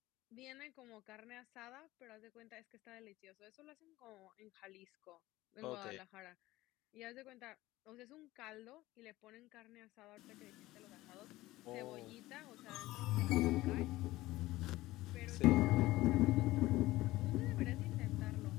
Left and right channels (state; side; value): quieter; right; 17.8 dB